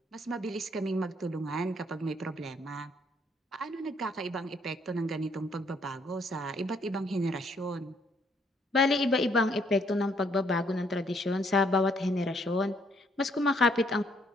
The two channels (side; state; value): both; normal; correlation 0.68